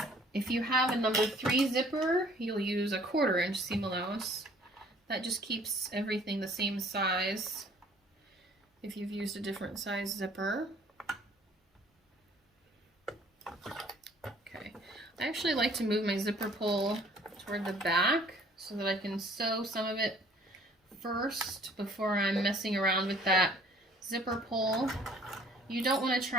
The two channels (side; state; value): both; normal; correlation 0.55